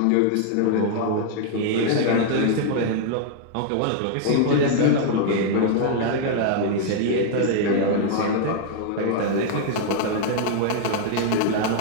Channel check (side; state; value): both; different; correlation -0.01